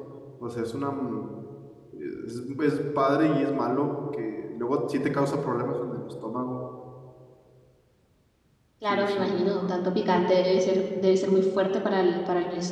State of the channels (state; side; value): identical; both; correlation 1.00